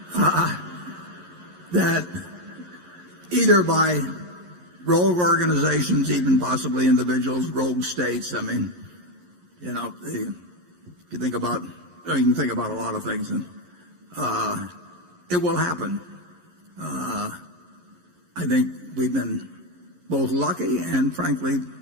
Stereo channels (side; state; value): left; late; 11 ms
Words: that either by rogue organizations, even possibly individuals, rogue states. I mean, you know, if you think about, you can think about a lot of things, and it will happen. I think we've been both lucky and, frankly,